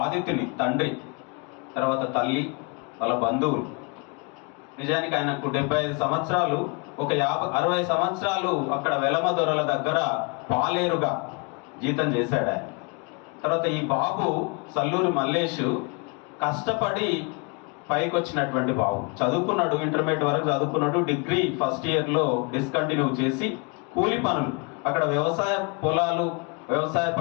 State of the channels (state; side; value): quieter; right; 31.8 dB